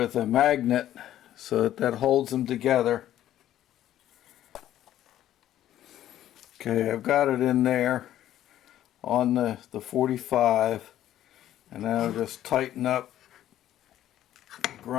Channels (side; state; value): right; quieter; 12.4 dB